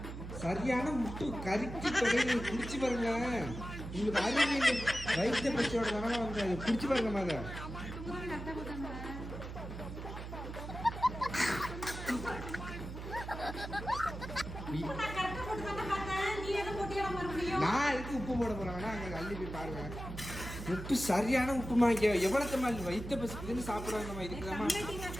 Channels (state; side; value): noise; right; hum, 8 dB below the sound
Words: சரியான முட்டு கறிக்கு தொகையை குடிச்சு பாருங்க. உங்களுக்கு அறிவியல் வைத்திய பச்சையோட தானே வந்து குடிச்சு பாருங்க அதை. நான் எதுக்கு உப்பு போட போறாங்கன்னா அங்க அள்ளி போய் பாருங்க. உப்பு சரியான உப்புமா. எவ்வளவுமா வைத்த பசுக்குன்னு சாப்பிடுவாங்கம்மா. இதுக்குதாம்மா